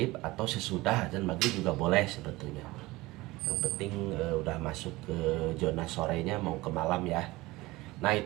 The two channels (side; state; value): left; quieter; 20.3 dB